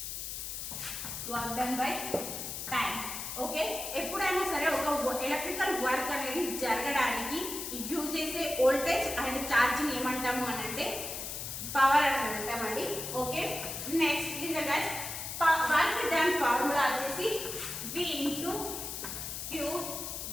Work done by time. Okay, ఎప్పుడైనా సరే ఒక ఎలక్ట్రికల్ వర్క్ అనేది జరగడానికి యూజ్ చేసే వోల్టేజ్ అండ్ ఛార్జ్ ని ఏమంటాము అని అంటే పవర్ అని అంటామండి. Okay, next listen guys, work done formula వచ్చేసి V ఇంటూ Q.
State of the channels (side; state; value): left; noise; hiss, 6 dB below the sound